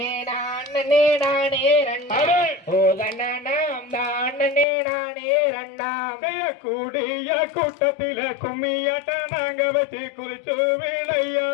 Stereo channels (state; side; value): drops out; right; at 4.7 s